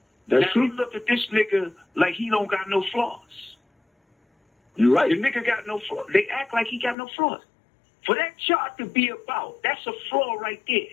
That's now true. You look at this nigga like he don't got no flaws. You're right. The nigga got no flaws. They act like he got no flaws. For that chart to be about, that's a flaw right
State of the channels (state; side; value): drops out; right; at 7.0 s